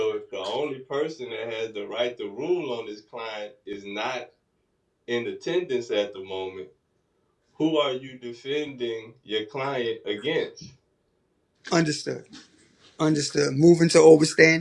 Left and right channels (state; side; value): identical; both; correlation 1.00